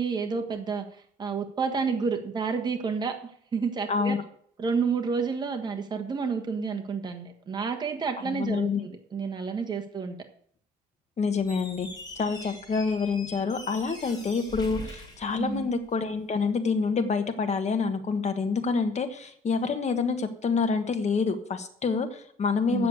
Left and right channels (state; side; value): normal; both; correlation 0.57